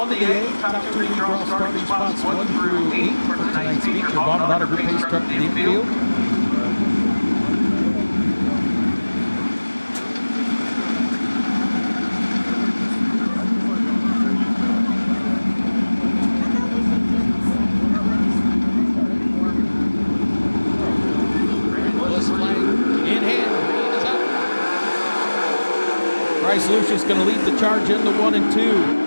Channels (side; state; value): both; inverted; correlation -1.00